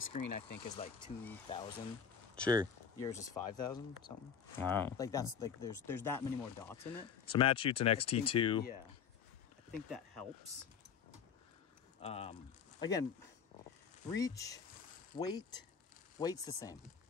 I think, is like 2,000. Sure. Yours is 5,000 something. Wow. Like that's like there's that many more dots in it. So Matt shoots an X-T2. Yeah, I think that helps. Again, reach, weight's the same.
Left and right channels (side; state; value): right; quieter; 7.0 dB